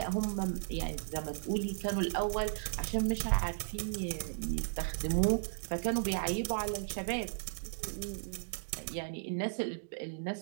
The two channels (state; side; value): silent; left; digital silence